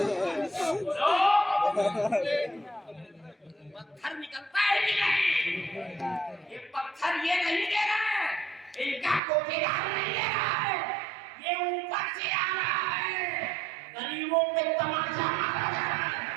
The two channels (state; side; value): drops out; left; at 9.2 s